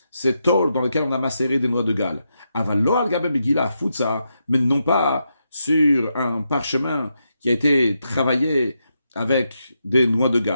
ces tôles dans lesquelles on a macéré des noix de Galles. Avalo al-gaben begila futsa, mais non pas sur un parchemin qui a été travaillé avec des noix de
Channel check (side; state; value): both; inverted; correlation -0.84